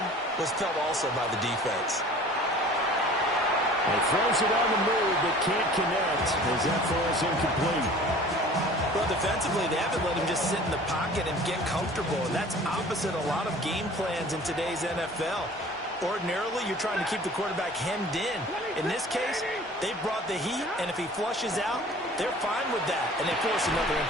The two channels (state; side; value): normal; both; correlation 0.46